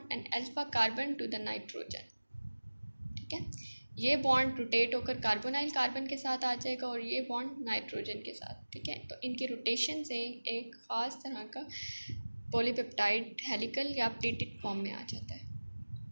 and alpha carbon to the nitrogen, ठीक है। ये बॉन्ड रोटेट होकर कार्बोनाइल कार्बन के साथ आ जाएगा और ये बॉन्ड नाइट्रोजन के साथ, ठीक है। तो इनके रोटेशन से एक ख़ास तरह का पॉलीपेप्टाइड हेलिकल या प्लेटेड फॉर्म में आ जाता है।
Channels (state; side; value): inverted; both; correlation -1.00